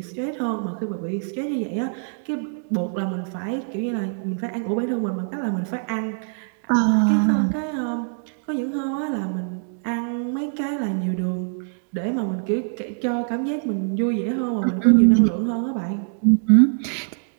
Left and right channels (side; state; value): left; silent; digital silence